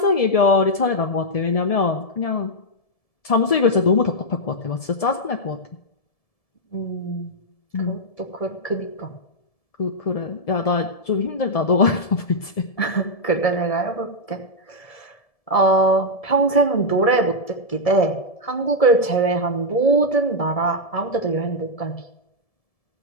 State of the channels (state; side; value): late; right; 1.7 ms